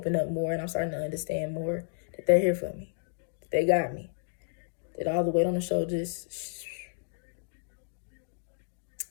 up more, and I'm starting to understand more that they're here for me, that they got me, that all the weight on the shoulders,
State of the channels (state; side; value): silent; right; digital silence